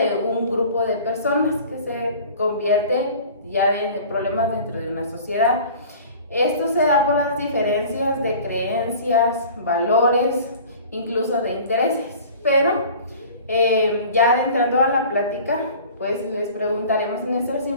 un grupo de personas que se convierten ya en problemas dentro de una sociedad. Esto se da por las diferencias de creencias, valores, incluso de intereses, pero ya adentrando a la plática, pues les preguntaremos a nuestras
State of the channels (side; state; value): both; inverted; correlation -0.44